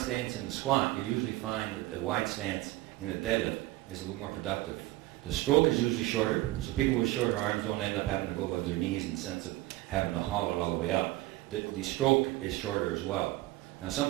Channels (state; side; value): quieter; left; 18.1 dB